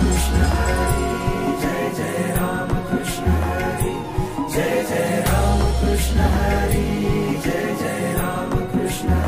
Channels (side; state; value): both; identical; correlation 1.00